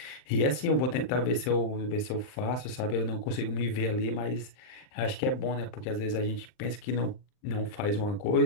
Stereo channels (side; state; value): right; late; 39 ms